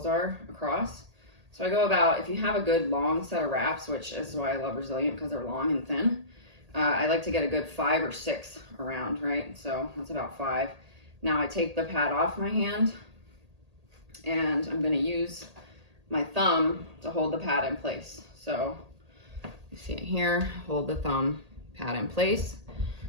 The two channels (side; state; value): left; late; 1.8 ms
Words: are across. So I go about, if you have a good long set of wraps, which is why I love Resilient because they're long and thin, I like to get a good 5 or 6 around, right? So that's about 5. Now I take the pad off my hand and I'm gonna use my thumb to hold the pad in place. So you see it here, hold the thumb pad in place.